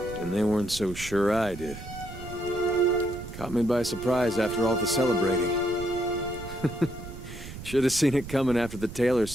And they weren't so sure I did. Caught me by surprise after all the celebrating. Should have seen it coming after the tailor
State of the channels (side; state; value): right; noise; rumble, 12 dB below the sound